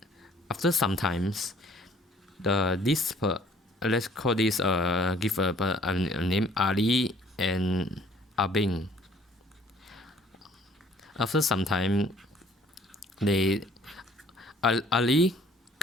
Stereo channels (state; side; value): normal; both; correlation 0.58